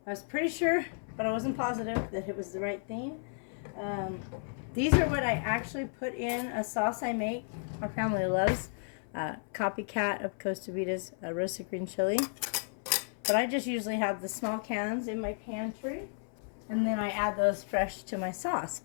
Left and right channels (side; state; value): right; silent; 56 dB below the other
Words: I was pretty sure, but I wasn't positive that it was the right thing. These are what I actually put in a sauce I make. Our family loves. Copycat of Costa Rica's roasted green chili. But I just usually have the small cans in my pantry. And then I add those fresh to my sauce.